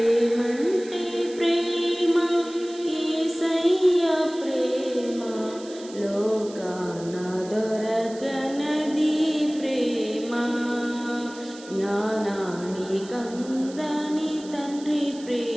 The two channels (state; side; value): noise; right; hiss, 19 dB below the sound